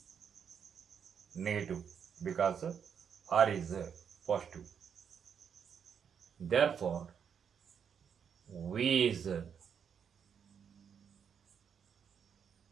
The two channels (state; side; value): quieter; left; 7.5 dB